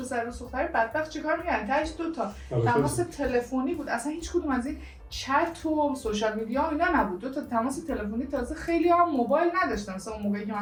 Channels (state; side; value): identical; both; correlation 1.00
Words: پسر دوست دختر بدبخت چی کار میکردن؟ تاش 2 تا تماس تلفنی بود، اصلا هیچ کدوم از این چت و سوشال میدیا اینا نبود. 2 تا تماس تلفنی، تازه خیلی هم موبایل نداشتن. مثلا اون موقعی که